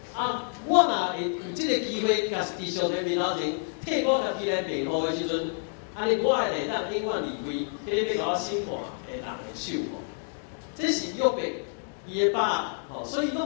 我若会有即个机会，甲伫上帝面头前替我家己来辩护的时阵，安尼我会当永远离开迄个要甲我审判的人的手。这是约伯伊的把所以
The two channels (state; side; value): silent; right; 58 dB below the other